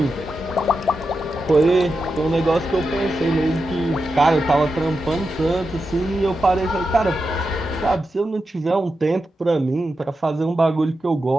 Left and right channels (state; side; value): normal; both; correlation 0.89